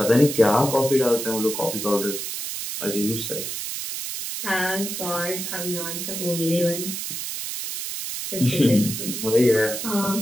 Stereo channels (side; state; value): right; noise; hiss, 5 dB below the sound